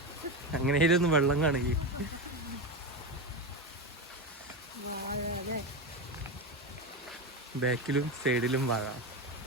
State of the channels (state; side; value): normal; both; correlation 0.17